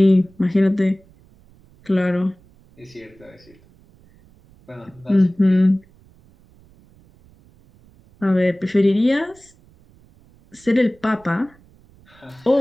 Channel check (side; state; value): right; noise; rumble, 29 dB below the sound